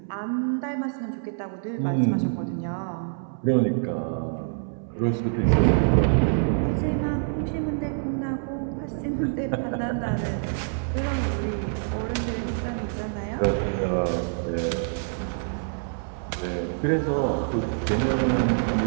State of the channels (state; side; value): silent; left; 61 dB below the other